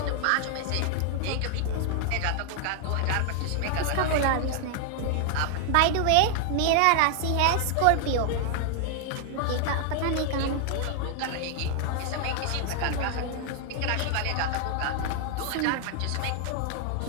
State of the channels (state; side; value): different; both; correlation 0.00